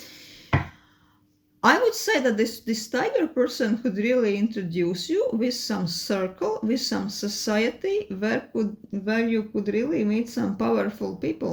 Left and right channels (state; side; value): identical; both; correlation 1.00